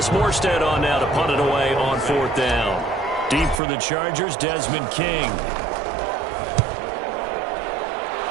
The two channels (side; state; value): left; drops out; at 3.6 s